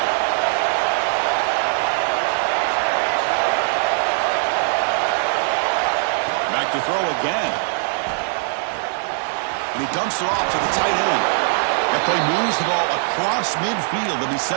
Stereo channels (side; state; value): left; silent; 65 dB below the other